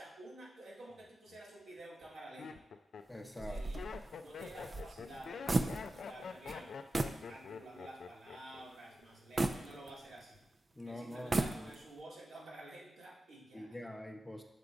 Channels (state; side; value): normal; both; correlation 0.93